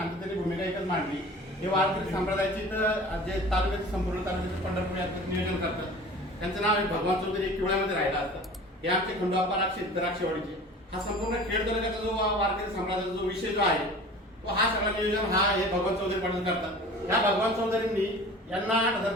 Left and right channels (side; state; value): both; normal; correlation 0.41